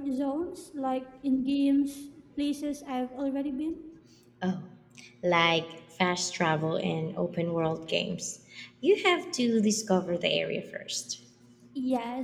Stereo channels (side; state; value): both; identical; correlation 1.00